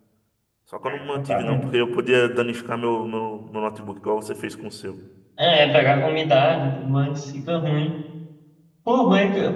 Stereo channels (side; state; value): both; identical; correlation 1.00